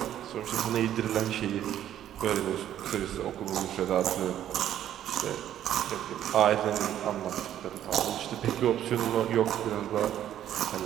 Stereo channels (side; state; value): left; quieter; 11.3 dB